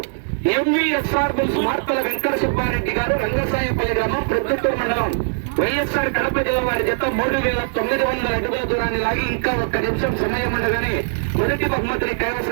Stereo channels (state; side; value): silent; left; digital silence